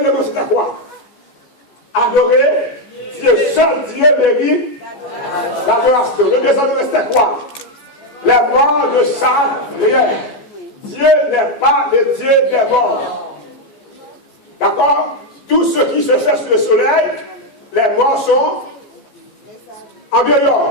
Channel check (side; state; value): right; late; 14 ms